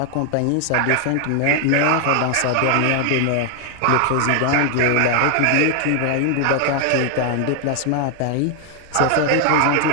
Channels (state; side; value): different; both; correlation 0.00